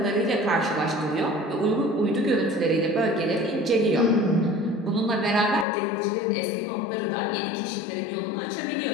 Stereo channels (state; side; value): drops out; right; at 5.7 s